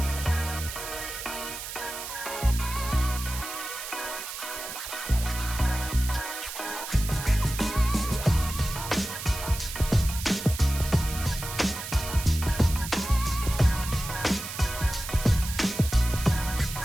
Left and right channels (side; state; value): right; noise; hiss, 8 dB below the sound